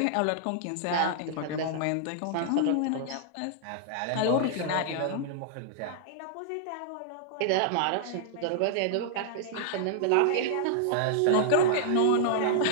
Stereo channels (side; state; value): both; different; correlation -0.01